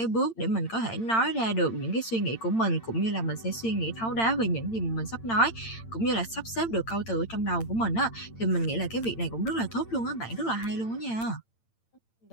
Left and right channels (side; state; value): right; late; 8.8 ms